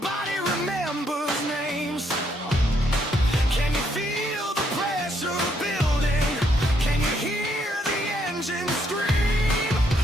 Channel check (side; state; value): both; normal; correlation 0.73